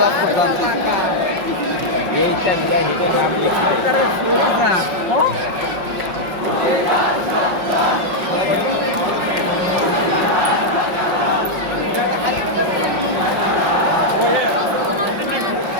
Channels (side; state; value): left; late; 5.5 ms